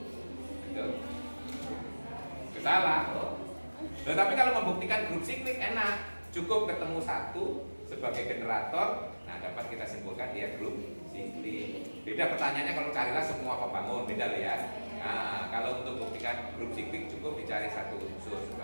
Betul? Salah. Tetapi kalau membuktikan grup siklik enak, cukup ketemu satu sebagai generator, nah dapat kita simpulkan dia grup siklik. Beda pertanyaannya kalau carilah semua pembangun, beda loh ya. Nah, kalau untuk buktikan grup siklik cukup dicari satu unsur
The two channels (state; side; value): inverted; both; correlation -1.00